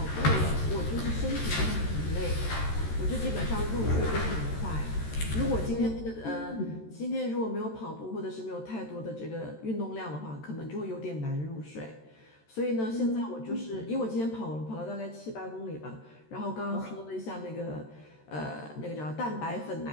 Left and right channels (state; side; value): late; right; 13 ms